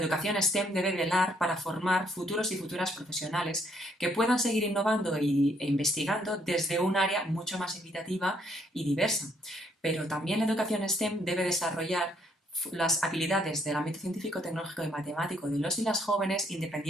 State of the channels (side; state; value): both; normal; correlation 0.69